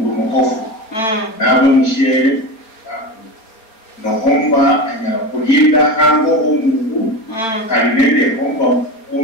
mukofu nabo mushere no anyara kulinda hango umundu kalinende homba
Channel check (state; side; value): late; right; 4.4 ms